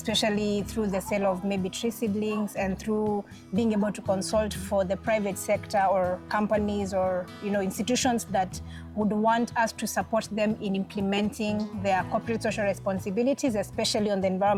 through the sale of maybe tree seedlings, and through being able to consult for the private sector or companies or institutions that would want us to support them in implementing their corporate social responsibilities, especially on the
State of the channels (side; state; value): both; identical; correlation 1.00